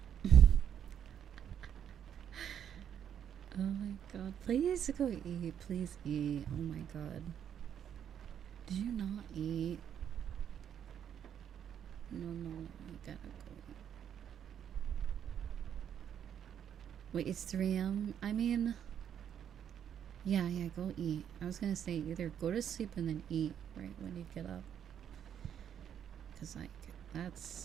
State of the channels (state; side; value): quieter; left; 9.1 dB